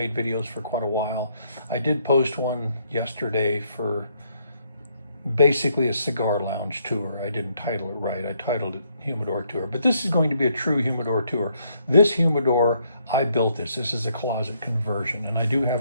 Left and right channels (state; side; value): inverted; both; correlation -0.72